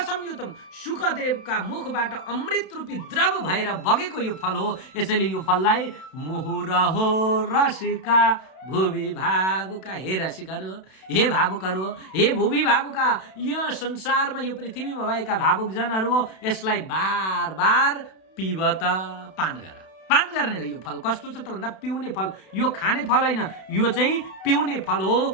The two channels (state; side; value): late; right; 32 ms